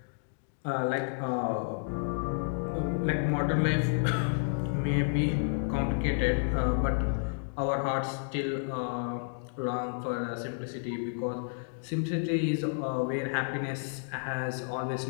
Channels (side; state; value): right; silent; digital silence